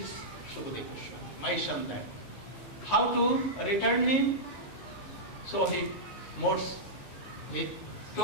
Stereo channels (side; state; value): right; late; 15 ms